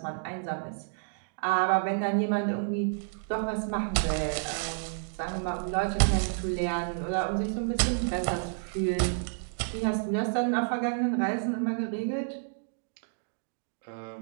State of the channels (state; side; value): silent; left; digital silence